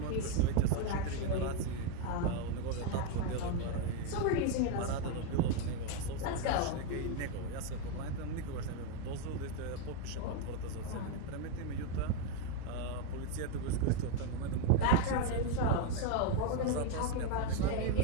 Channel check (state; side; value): different; both; correlation 0.01